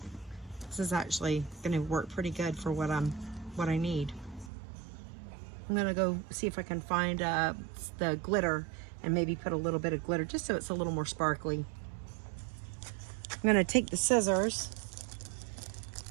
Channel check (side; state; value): left; drops out; at 4.5 s